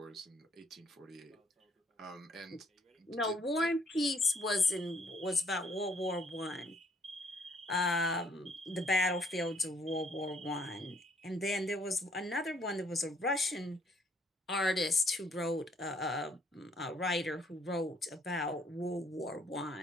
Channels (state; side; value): normal; both; correlation 0.65